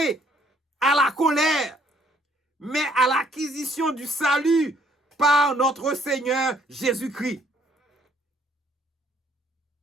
à la colère, mais à l'acquisition du salut par notre Seigneur Jésus-Christ.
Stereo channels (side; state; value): both; normal; correlation 0.65